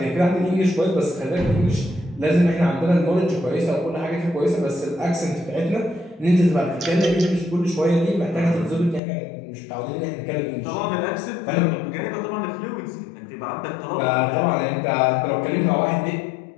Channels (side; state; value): right; drops out; at 9.0 s